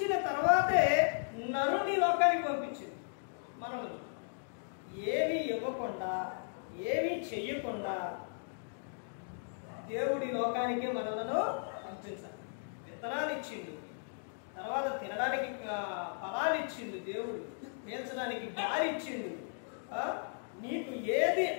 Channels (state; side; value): silent; right; digital silence